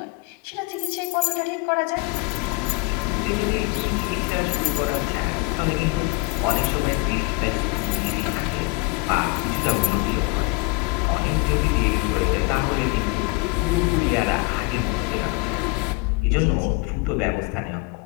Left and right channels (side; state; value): right; quieter; 24.4 dB